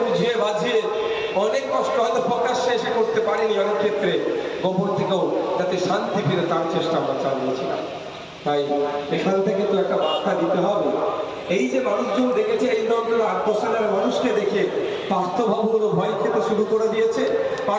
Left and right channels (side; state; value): both; identical; correlation 1.00